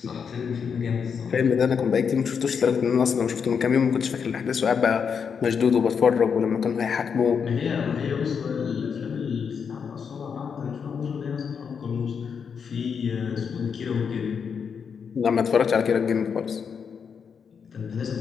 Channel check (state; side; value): quieter; right; 6.6 dB